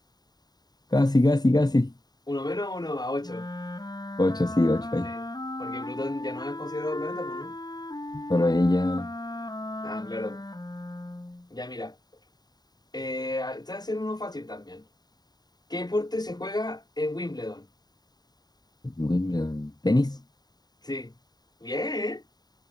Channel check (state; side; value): late; right; 0.20 ms